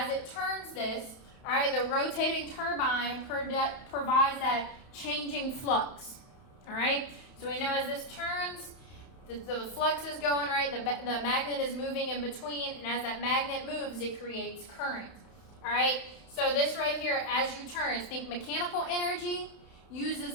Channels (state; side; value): late; right; 31 ms